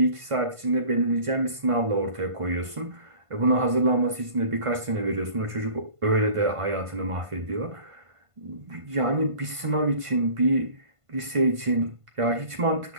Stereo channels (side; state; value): left; late; 1.5 ms